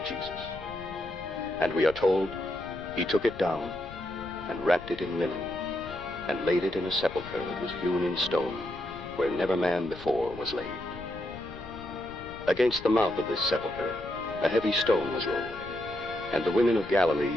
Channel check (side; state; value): left; noise; rumble, 16 dB below the sound